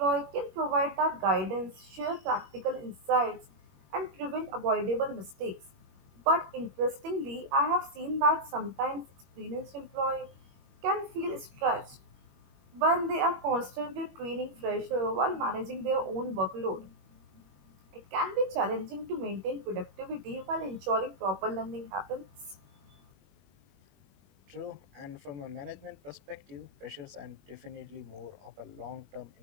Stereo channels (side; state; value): left; late; 21 ms